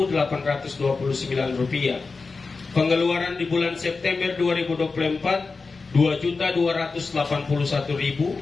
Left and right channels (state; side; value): quieter; right; 4.2 dB